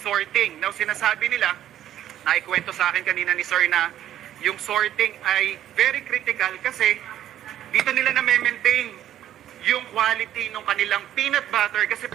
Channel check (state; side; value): quieter; left; 11.8 dB